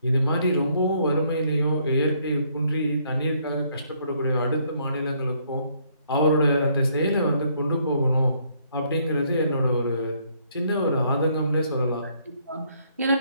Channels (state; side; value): inverted; both; correlation -0.68